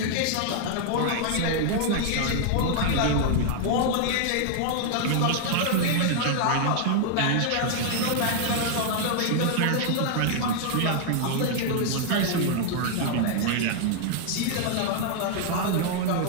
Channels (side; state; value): both; different; correlation 0.00